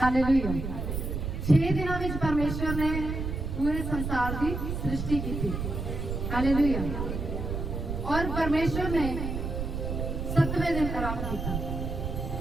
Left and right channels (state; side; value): noise; right; rumble, 3 dB below the sound